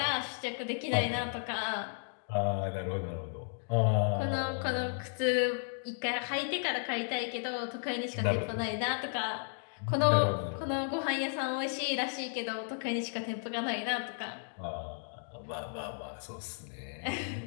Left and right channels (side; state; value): right; silent; digital silence